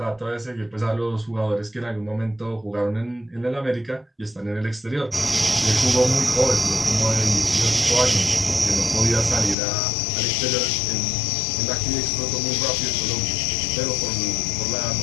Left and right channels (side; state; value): right; drops out; at 9.6 s